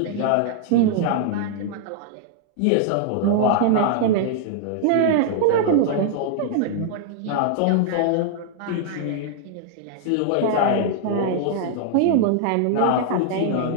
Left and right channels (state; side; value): different; both; correlation -0.01